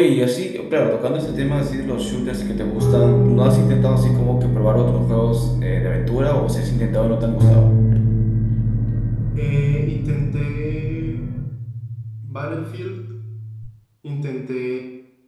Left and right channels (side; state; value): both; identical; correlation 1.00